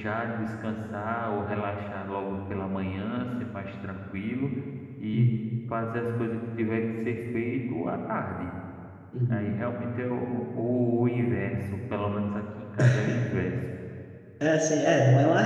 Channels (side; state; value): both; identical; correlation 1.00